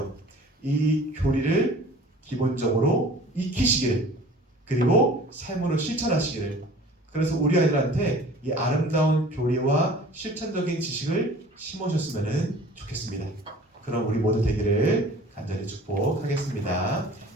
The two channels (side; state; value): both; normal; correlation 0.46